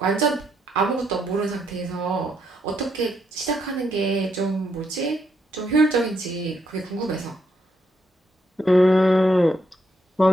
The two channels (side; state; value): both; normal; correlation 0.76